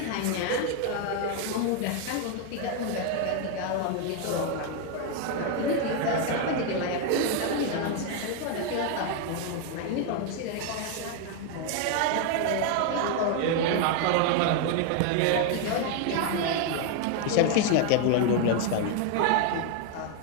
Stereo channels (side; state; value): both; different; correlation 0.01